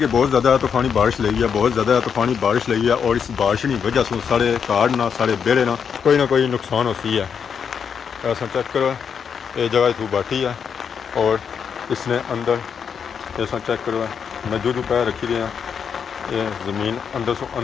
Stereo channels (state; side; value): quieter; right; 7.0 dB